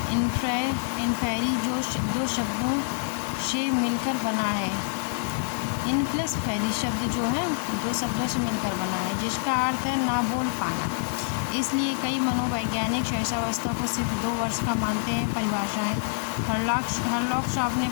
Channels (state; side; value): silent; right; digital silence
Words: इन्फेरी जो दो शब्दों से मिलकर बना है। इनप्लस फेरी शब्द जो है 2 शब्दों से मिलकर बना है, जिसका अर्थ है ना बोल पाना। इसलिए कई मनोवैज्ञानिक शैशवावस्था को सिर्फ 2 वर्ष का मानते हैं। परिभाषाएं। हरलॉक साहब ने